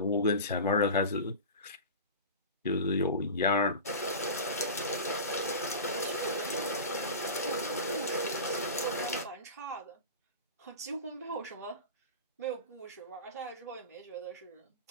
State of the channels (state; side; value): inverted; both; correlation -0.31